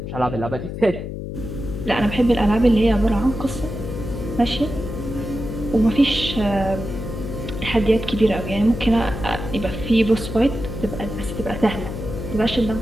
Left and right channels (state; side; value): noise; left; hum, 7 dB below the sound